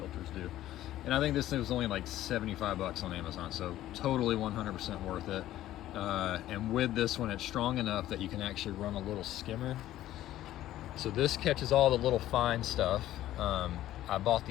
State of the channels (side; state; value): right; quieter; 13.8 dB